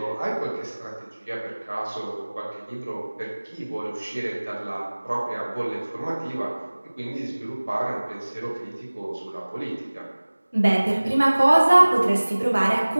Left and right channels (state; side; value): inverted; both; correlation -1.00